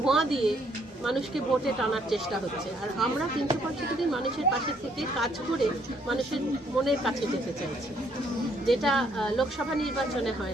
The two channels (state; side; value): normal; both; correlation 0.68